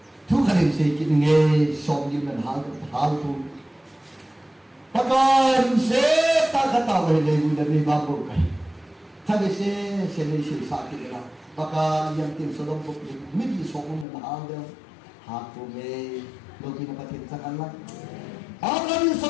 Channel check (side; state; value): right; drops out; at 14.1 s